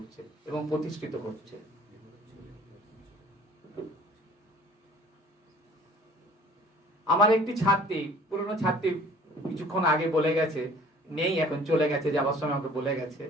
এবং প্রতিষ্ঠিত করছে। আমার একটি ছাত্রী, পুরনো ছাত্রী, কিছুক্ষণ আগে বলে গেছে, নেই এখন, চলে গেছে, যাবার সময় আমাকে বলে গেছে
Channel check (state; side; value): normal; both; correlation 0.50